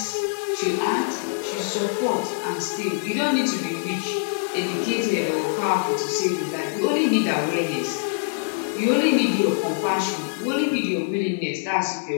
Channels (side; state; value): right; silent; digital silence